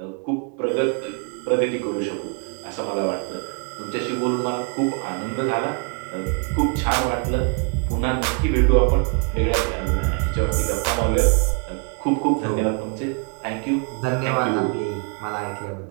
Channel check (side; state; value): left; quieter; 37.0 dB